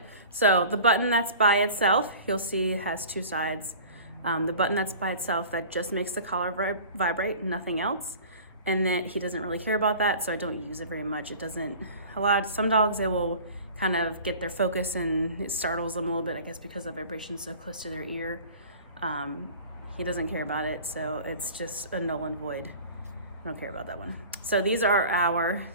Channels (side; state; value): both; inverted; correlation -0.42